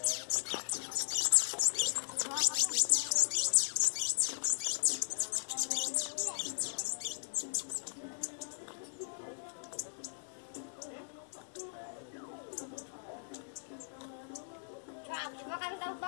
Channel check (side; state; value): right; silent; digital silence